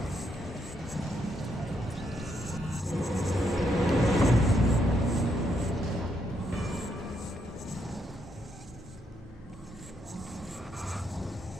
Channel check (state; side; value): normal; both; correlation 0.77